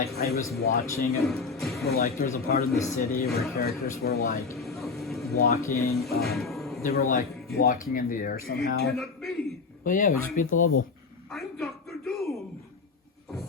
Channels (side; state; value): right; quieter; 4.6 dB